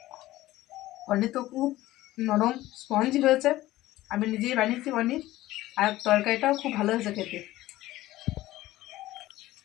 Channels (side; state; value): right; quieter; 16.3 dB